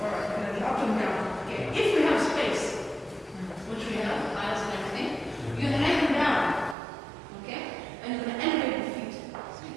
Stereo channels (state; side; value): drops out; left; at 6.8 s